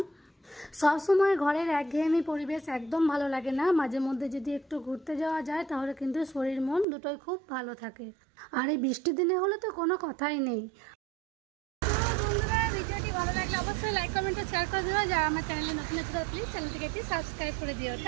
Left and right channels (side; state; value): left; drops out; at 6.9 s